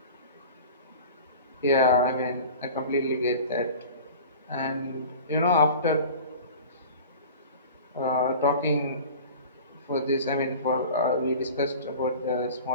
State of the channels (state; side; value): inverted; both; correlation -0.38